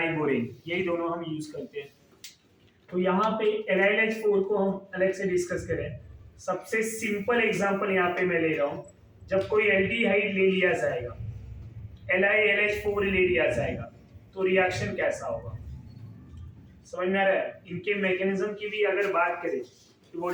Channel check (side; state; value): both; identical; correlation 1.00